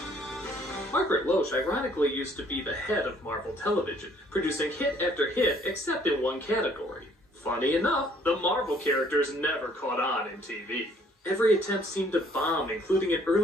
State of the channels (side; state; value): both; normal; correlation 0.61